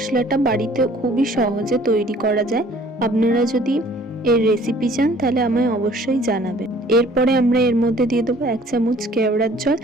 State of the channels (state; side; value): normal; both; correlation 0.54